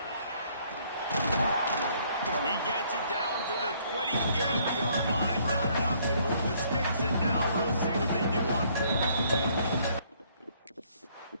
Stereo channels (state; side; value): inverted; both; correlation -0.64